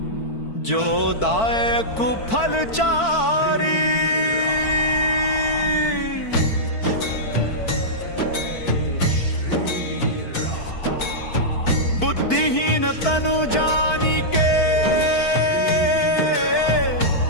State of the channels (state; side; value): late; right; 4.5 ms